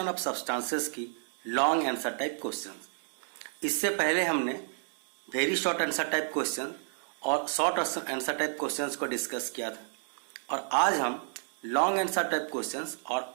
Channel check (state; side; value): silent; left; digital silence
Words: of substances की लॉन्ग आंसर टाइप क्वेश्चन। इससे पहले हमने very short answer type question और शॉर्ट आंसर टाइप क्वेश्चंस को डिस्कस किया था, और आज हम लॉन्ग आंसर टाइप क्वेश्चंस और